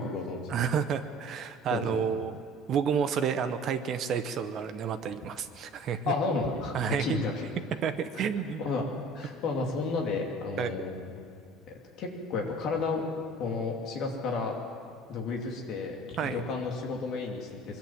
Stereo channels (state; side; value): normal; both; correlation 0.46